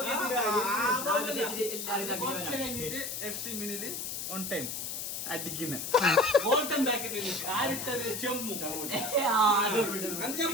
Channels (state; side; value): noise; left; hiss, 5 dB below the sound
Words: കുറച്ച് കഴിഞ്ഞിട്ട് FC മിനില് ഓൺ ടൈം അടിക്കുന്ന ഗോൾഡൻ ബാക്കറ്റിൽ ആരിട്ടത് ചെമ്മു